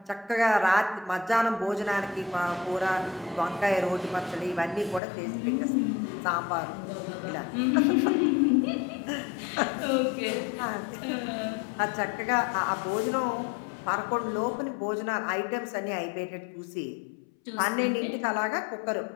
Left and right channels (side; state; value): right; drops out; at 5.0 s